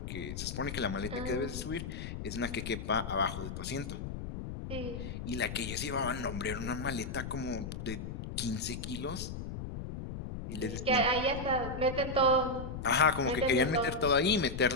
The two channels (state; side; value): noise; left; rumble, 7 dB below the sound